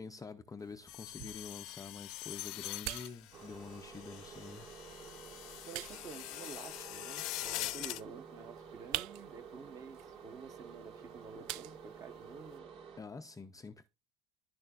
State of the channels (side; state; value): both; normal; correlation 0.32